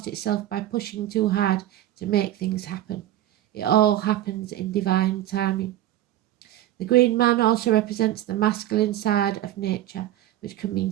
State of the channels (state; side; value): quieter; left; 13.4 dB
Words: itself by pushing too hard to make things happen. It all happens in divine timing. The green man also represents the masculine side of nature, which can mean